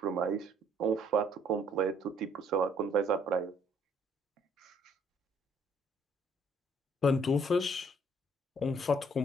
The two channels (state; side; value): normal; both; correlation 0.63